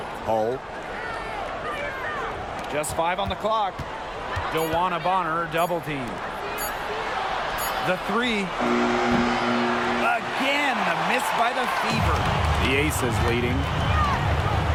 Hull. Just 5 on the clock. DeWanna Bonner double team. The 3. Again, the miss by the Fever. The Aces leading.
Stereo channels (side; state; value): both; identical; correlation 1.00